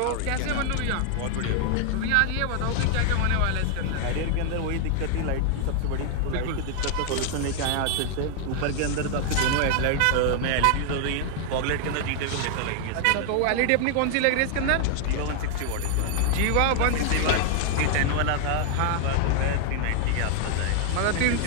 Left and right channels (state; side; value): different; both; correlation 0.00